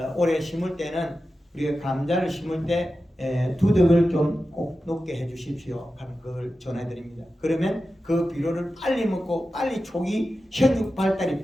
올해 심을 때는 우리가 감자를 심을 때 두둑을 좀 꼭 높게 해 주십시오 하는 걸 전해드립니다. 그러면 그 비료를 빨리 먹고 빨리 초기 생육 발달이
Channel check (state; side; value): normal; both; correlation 0.93